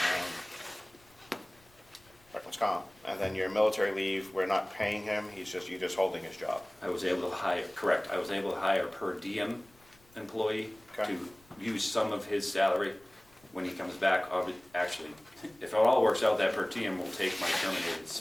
workman's comp. And then your military leave, we're not paying him, you're just holding his job. I was able to hire, correct, I was able to hire a per diem employee Okay. to use some of his salary when he comes back. Actually, if it all works out, that per diem will take my terminated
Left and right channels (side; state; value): left; noise; rumble, 29 dB below the sound